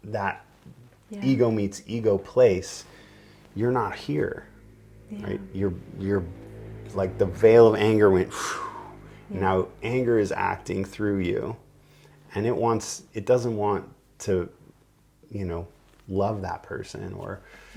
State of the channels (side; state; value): both; identical; correlation 1.00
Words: ego meets ego place, you're not here, right? You're like the veil of anger went. Now anger is acting through you, and it doesn't want to, love that person or